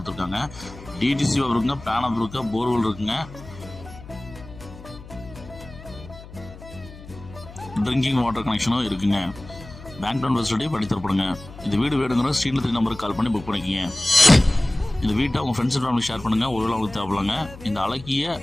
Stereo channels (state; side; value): noise; left; hum, 17 dB below the sound